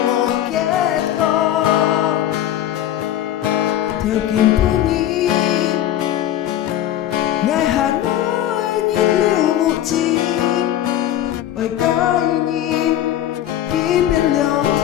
một kết con theo kim phú nhi ngài hà nội nhìn lưu một chim ôi cái nhìn ký bên lòng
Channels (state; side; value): quieter; right; 12.0 dB